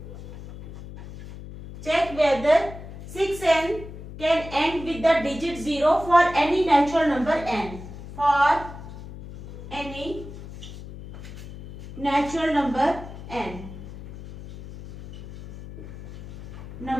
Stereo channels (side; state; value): left; noise; hum, 13 dB below the sound